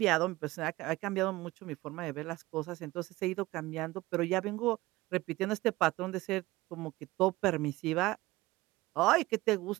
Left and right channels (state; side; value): quieter; left; 19.5 dB